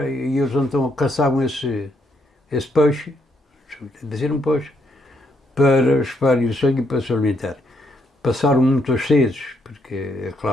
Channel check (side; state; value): both; normal; correlation 0.75